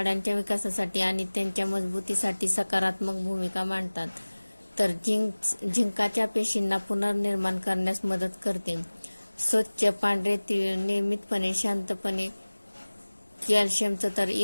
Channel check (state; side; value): inverted; both; correlation -1.00